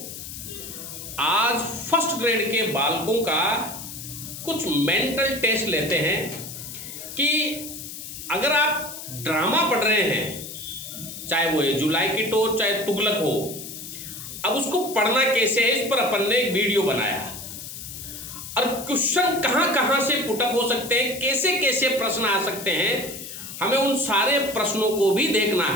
आज फर्स्ट ग्रेड के बालकों का कुछ मेंटल टेस्ट लेते हैं कि अगर आप ड्रामा पढ़ रहे हैं, चाहे वो एज यू लाइक इट हो चाहे तुगलक हो, अब उसको पढ़ना कैसे है, इस पर अपन ने एक वीडियो बनाया और क्वेश्चन कहाँ कहाँ से पुटअप हो सकते हैं, कैसे कैसे प्रश्न आ सकते हैं, हमें उन सारे प्रश्नों को भी देखना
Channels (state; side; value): noise; left; hiss, 10 dB below the sound